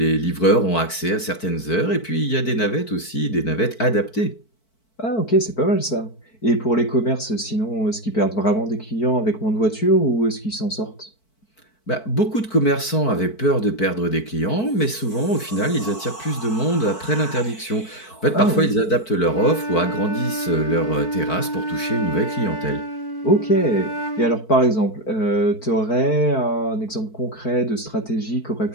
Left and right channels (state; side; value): late; right; 4.5 ms